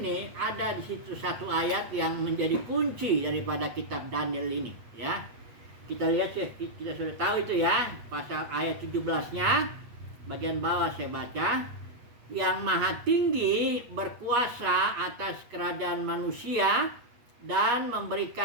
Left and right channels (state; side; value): late; left; 8.3 ms